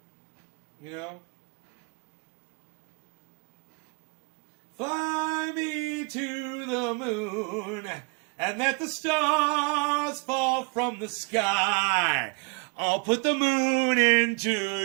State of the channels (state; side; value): quieter; left; 32.8 dB